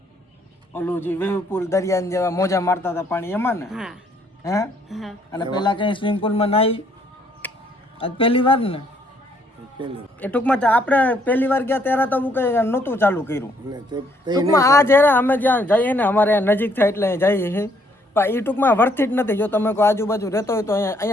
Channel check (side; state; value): both; normal; correlation 0.67